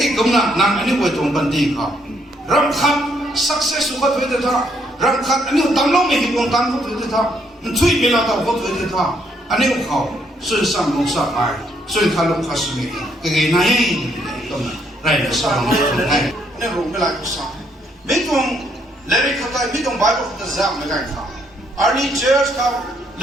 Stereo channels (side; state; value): both; normal; correlation 0.71